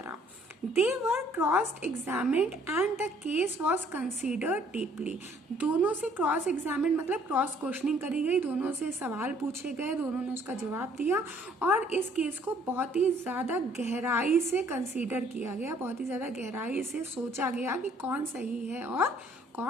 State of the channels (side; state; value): both; normal; correlation 0.61